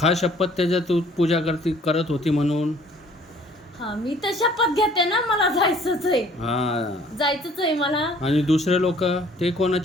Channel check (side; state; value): both; normal; correlation 0.57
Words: शपथ त्याच्या तू पूजा करत होती म्हणून. हा मी तर शपथ घेते ना, मला जायचंच आहे, हां, जायचंच आहे मला. आणि दुसरे लोक ते